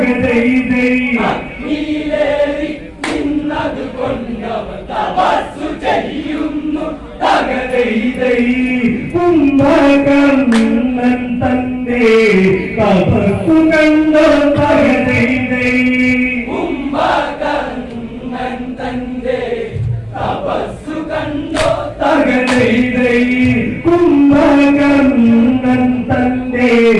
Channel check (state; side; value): identical; both; correlation 1.00